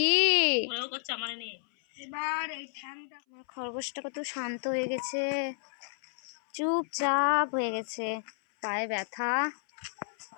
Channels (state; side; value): silent; right; 57 dB below the other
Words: খরগোশটা কত শান্ত হয়ে গেছে, চুপচাপ হয়ে গেছে। পায়ে ব্যথা,